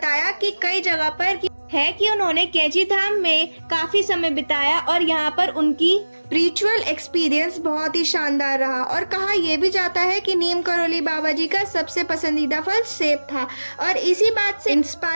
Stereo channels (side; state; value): both; inverted; correlation -1.00